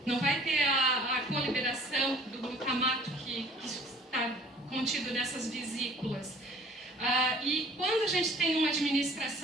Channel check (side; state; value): both; normal; correlation 0.51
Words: não vai ter a coliberação do glutamato que está contido nessas vesículas. E quando a gente tem uma